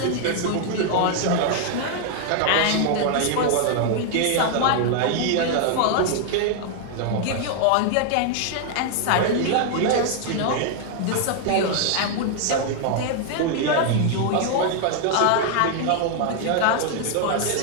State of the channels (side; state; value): both; different; correlation 0.00